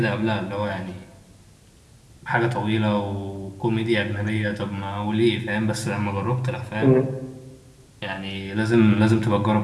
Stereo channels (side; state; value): both; identical; correlation 1.00